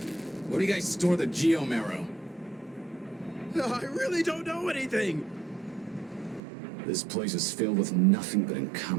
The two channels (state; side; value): drops out; left; at 6.4 s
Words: Where do you guys store the Geomarrow? I really don't know anything! This place is filled with nothing but